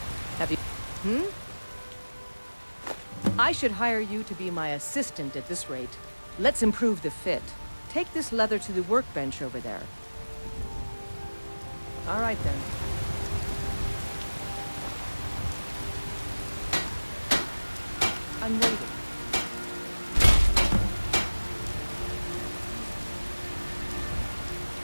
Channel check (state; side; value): inverted; both; correlation -1.00